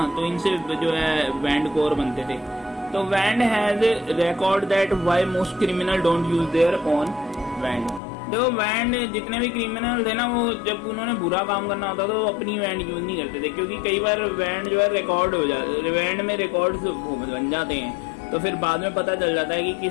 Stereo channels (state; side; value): drops out; right; at 8.0 s